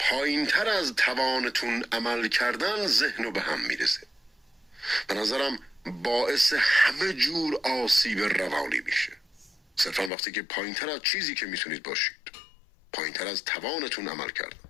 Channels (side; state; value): right; drops out; at 10.1 s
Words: از توانتون عمل کردن ذهنو به هم میریزه. به نظرم باعث همه جور آسیب روانی میشه. صرفا وقتی که پایینتر از چیزی که میتونید باشید، پایینتر از توانتون عمل کردن،